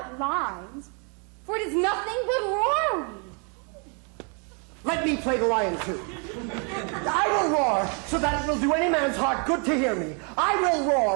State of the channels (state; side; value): quieter; left; 36.9 dB